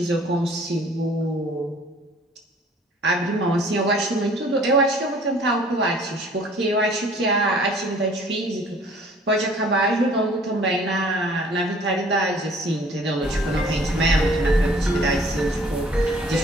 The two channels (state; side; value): normal; both; correlation 0.54